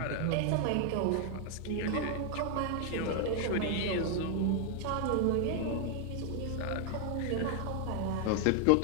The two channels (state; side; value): different; both; correlation 0.00